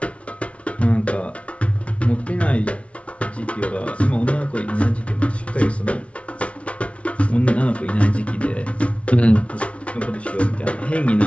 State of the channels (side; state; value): right; late; 0.062 ms